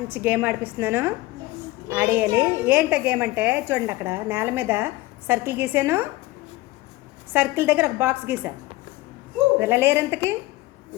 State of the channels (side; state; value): right; quieter; 19.4 dB